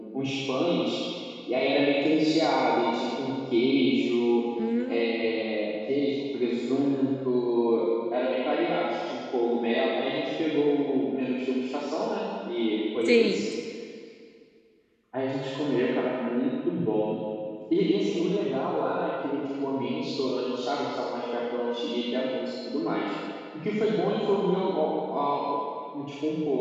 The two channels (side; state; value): both; identical; correlation 1.00